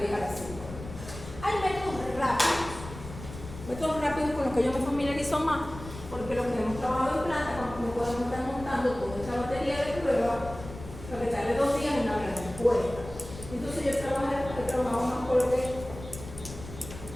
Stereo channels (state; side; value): noise; left; rumble, 13 dB below the sound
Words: a la 5. Hay métodos rápidos con los que yo me familiarizo más, porque los que hemos trabajado en planta, cuando me podemos estar montando toda esta batería de pruebas, lo que tarde 2 días en una gran respuesta. Entonces yo he trabajado más con lo